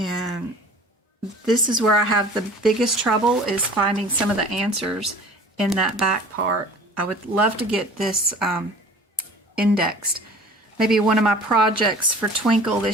this is where I have the biggest trouble, is finding some of the answers in that back part. I would love to get this indexed. Maybe one of my projects for Twinkle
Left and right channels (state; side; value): normal; both; correlation 0.45